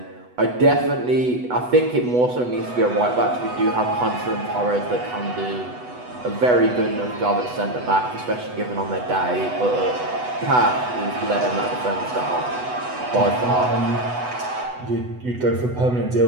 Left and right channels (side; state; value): left; late; 8.1 ms